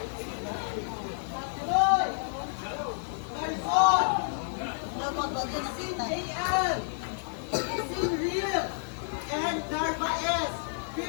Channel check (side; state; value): right; silent; 58 dB below the other